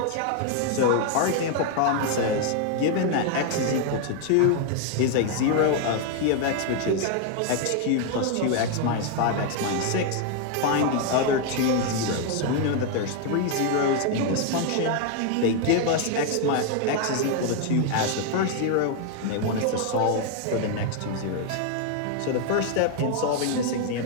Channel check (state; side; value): different; both; correlation 0.00